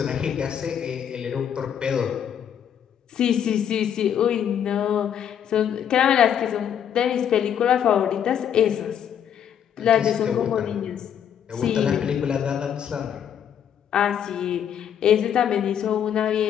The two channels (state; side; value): quieter; right; 9.0 dB